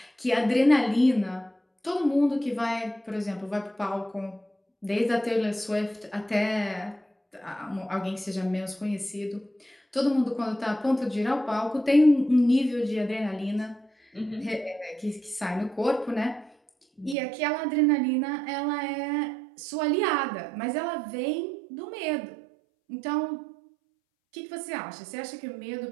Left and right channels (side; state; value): left; drops out; at 17.2 s